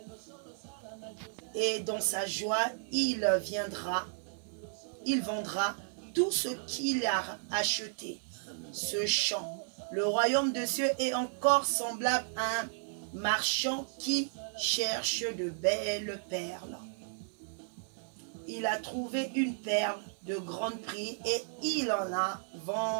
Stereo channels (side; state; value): left; silent; digital silence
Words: Et dans sa joie, il vendra tout ce qu'il a acheté. Ce champ. Le royaume des cieux est encore semblable à un marchand qui cherche de belles perles. Il a trouvé une perle de grand prix et il